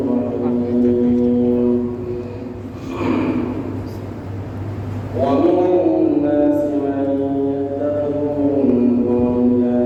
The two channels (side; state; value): both; identical; correlation 1.00